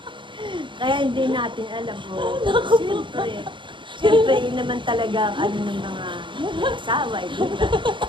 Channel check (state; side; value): late; left; 0.24 ms